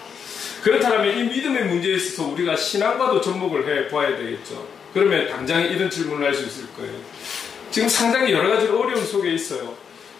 그렇다면 이 믿음의 문제에 있어서 우리가 신앙과도 접목을 해 보아야 되겠죠. 그러면 당장 이런 질문을 할 수 있을 거예요. 지금 상당히 여러 가지 어려움 속에 있어요.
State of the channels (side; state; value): right; quieter; 6.9 dB